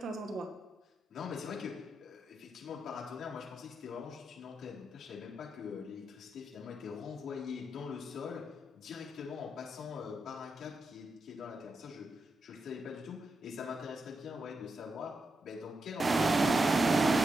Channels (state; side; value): normal; both; correlation 0.85